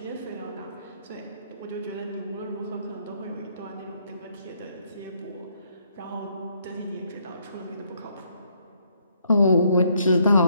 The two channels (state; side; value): inverted; both; correlation -0.71